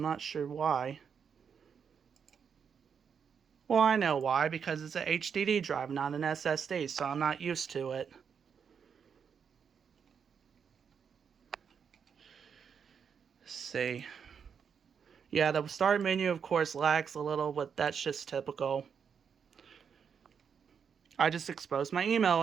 not sure why. Well, I know why. Because it's an HDD drive, not an SSD. So I'm not used to it. Let's see. Yeah, the start menu, of course, lags a little, but that's just typical. I just exposed my email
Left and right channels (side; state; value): left; quieter; 6.9 dB